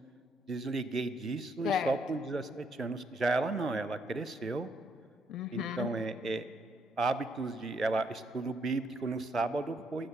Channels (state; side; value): normal; both; correlation 0.72